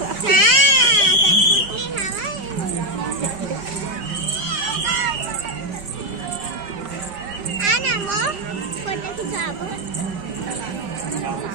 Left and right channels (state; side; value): late; left; 5.3 ms